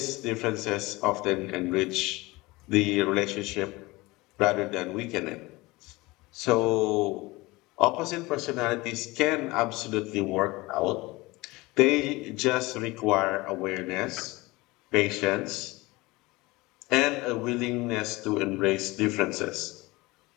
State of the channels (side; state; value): right; quieter; 21.9 dB